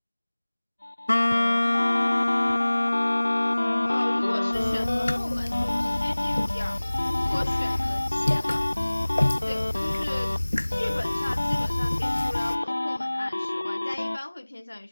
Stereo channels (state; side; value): inverted; both; correlation -1.00